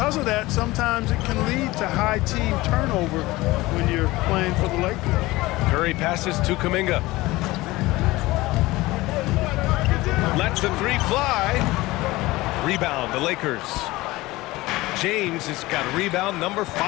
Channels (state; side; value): quieter; right; 19.6 dB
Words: of that, sometimes it can lead to high team turnover when you're playing for the Lakers. Curry passes to Kuminga. Lets the 3 fly. Rebound, the Lakers. James has got rebound number